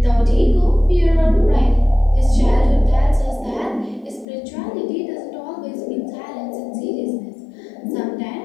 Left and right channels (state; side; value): drops out; right; at 4.2 s